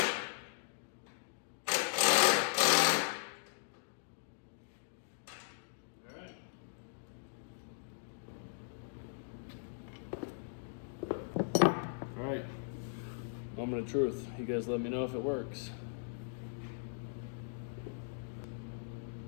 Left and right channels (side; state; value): right; silent; digital silence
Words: Moment of truth. You guys let me know if it works.